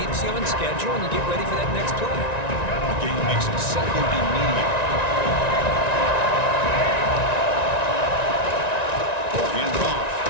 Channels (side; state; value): right; late; 1.9 ms